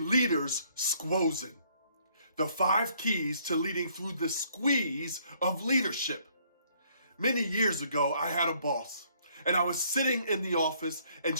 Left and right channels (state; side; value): inverted; both; correlation -0.65